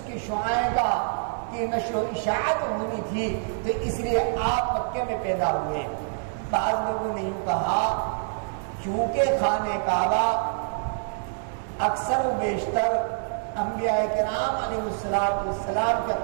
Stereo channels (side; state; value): left; silent; digital silence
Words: کی شعاعیں کا کی نشر و اشاعت ہونی تھی، تو اس لیے آپ مکے میں پیدا ہوئے۔ بعض لوگوں نے یوں کہا کیونکہ خانہ کعبہ اکثر و بیشتر انبیاء کرام علیہ السلام کا